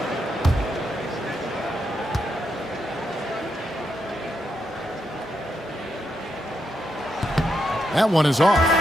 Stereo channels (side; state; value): both; normal; correlation 0.82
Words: That one is